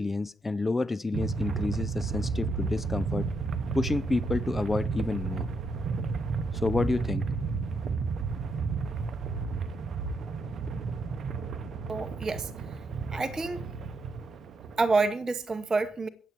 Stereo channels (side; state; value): both; normal; correlation 0.80